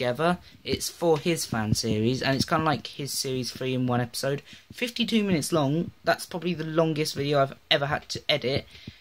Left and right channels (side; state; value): both; identical; correlation 1.00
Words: It's for his fan series, and it's kind of like his series 3 in one episode. 52 minutes long. That's probably the longest video I've ever had to edit.